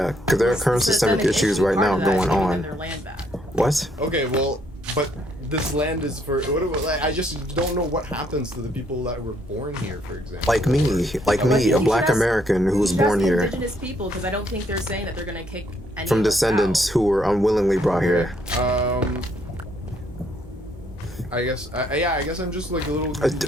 because there are current systemic issues right now going Giving on. them their land back. What? Okay, well, but this land is for like, I just don't know what happens to the people that were born here, for example. Like me, a black American who was You should born ask here Indigenous people, because I don't think they're saying that they're gonna kick any from of us descendants out. who were unwillingly brought here. I guess I'm just like a little. A you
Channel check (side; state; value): both; normal; correlation 0.70